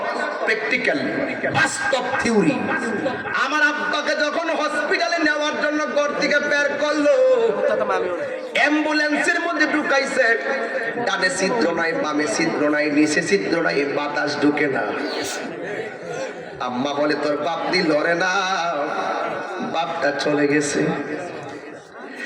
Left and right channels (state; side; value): identical; both; correlation 1.00